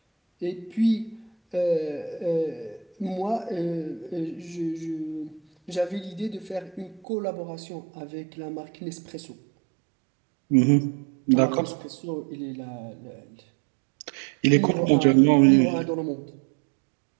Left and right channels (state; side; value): drops out; left; at 7.0 s